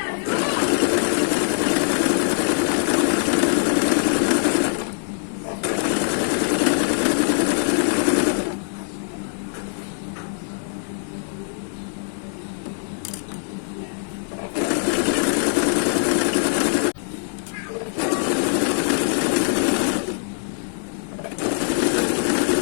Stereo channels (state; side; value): silent; right; digital silence